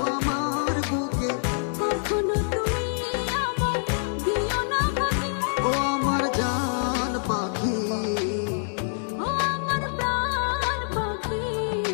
আমার বুকে। কখনো তুমি আমায় দিও না ভাগে, ও আমার জান পাখি, ও আমার প্রাণ পাখি,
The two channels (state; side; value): silent; right; digital silence